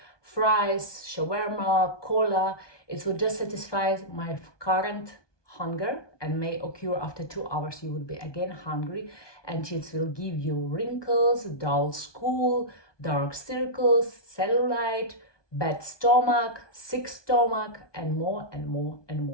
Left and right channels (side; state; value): right; late; 1.2 ms